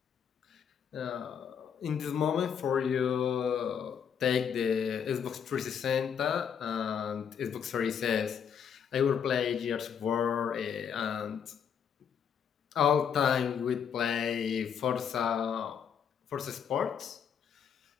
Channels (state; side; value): quieter; right; 7.7 dB